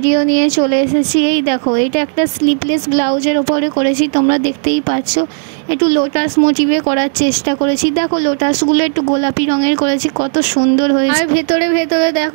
নিয়ে চলে এসেছি। এই দেখো, এটা একটা স্লিপলেস ব্লাউজের ওপরে করেছি, তোমরা দেখতেই পাচ্ছ। একটু লোটাস মোটিভে করার চেষ্টা করেছি। দেখো লোটাসগুলো একটু গোলাপি রঙের করেছি, কত সুন্দর হয়েছে। আর ভেতরে ভেতরে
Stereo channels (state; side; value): silent; left; 71 dB below the other